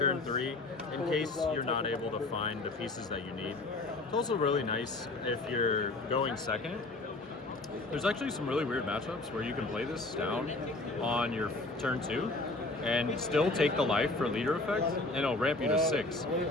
3 in case you're not able to find the pieces that you need. It's also really nice if you're going second. There's actually some really weird matchups where you can play this down on your turn 2 and still take the life for leader effect, and it'll ramp you to 6.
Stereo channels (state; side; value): quieter; right; 3.0 dB